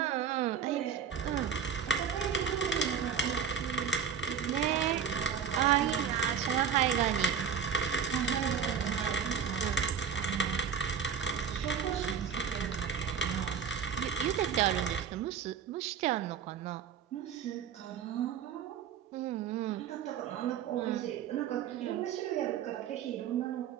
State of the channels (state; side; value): quieter; left; 7.4 dB